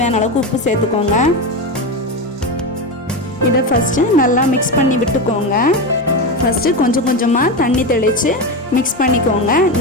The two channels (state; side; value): normal; both; correlation 0.17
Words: அளவுக்கு உப்பு சேர்த்துக்கோங்க. இதை ஃபஸ்ட்டு நல்லா மிக்ஸ் பண்ணி விட்டுக்கோங்க. ஃபஸ்ட்டு கொஞ்சம் கொஞ்சமாக தண்ணி தெளித்து மிக்ஸ் பண்ணிக்கோங்க.